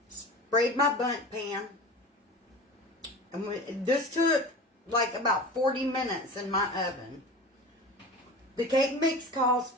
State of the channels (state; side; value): normal; both; correlation 0.34